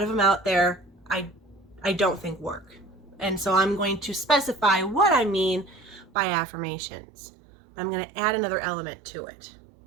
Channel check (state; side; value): drops out; left; at 6.1 s